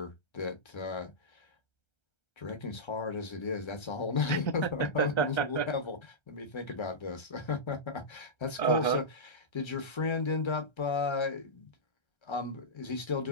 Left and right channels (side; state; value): right; late; 1.3 ms